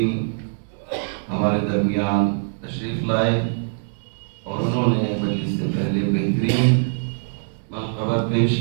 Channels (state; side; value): silent; left; digital silence